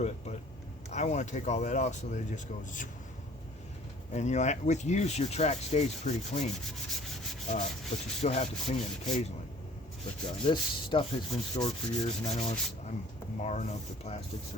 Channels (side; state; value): both; normal; correlation 0.52